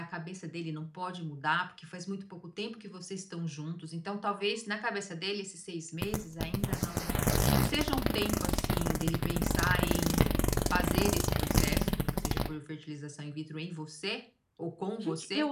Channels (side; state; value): both; identical; correlation 1.00